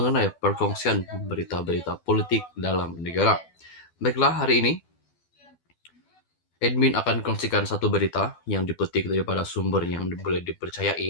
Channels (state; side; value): late; right; 12 ms